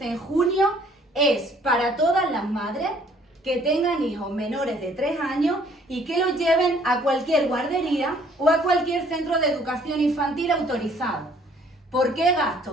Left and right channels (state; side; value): normal; both; correlation 0.60